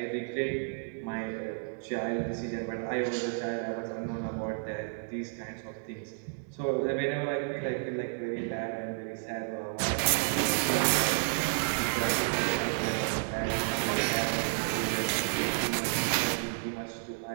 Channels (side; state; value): left; silent; digital silence